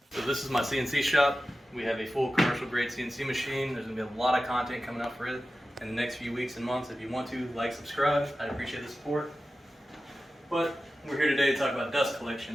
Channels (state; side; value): normal; both; correlation 0.94